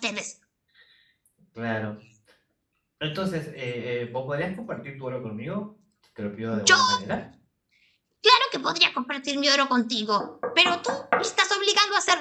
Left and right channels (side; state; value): both; identical; correlation 1.00